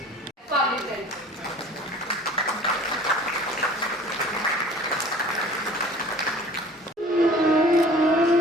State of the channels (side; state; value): both; normal; correlation 0.46